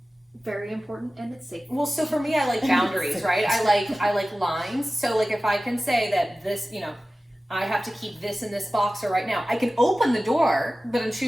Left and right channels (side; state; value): both; normal; correlation 0.96